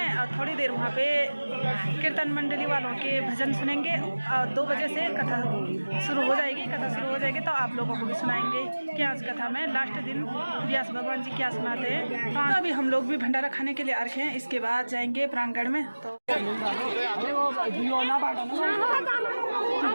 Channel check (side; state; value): both; inverted; correlation -1.00